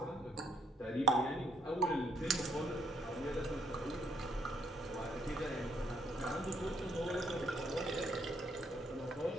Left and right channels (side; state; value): both; normal; correlation 0.68